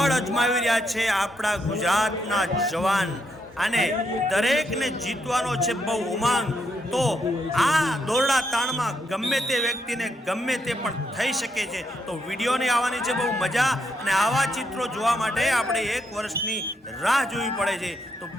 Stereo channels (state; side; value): normal; both; correlation 0.79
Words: અજમાવી રહ્યા છે આપણા ગુજરાતના જવાન અને દરેકને જીતવાનો છે બહુ ઉમંગ। તો આ દોરડા તાણમાં ગમે તે વ્યક્તિને ગમે તે પણ થઈ શકે છે। તો વિડીયોની આવવાની છે બહુ મજા અને આવા ચિત્રો જોવા માટે આપણે 1 વર્ષની રાહ જોવી પડે છે। તો